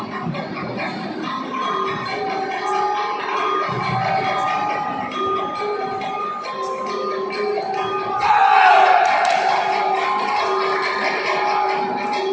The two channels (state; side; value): identical; both; correlation 1.00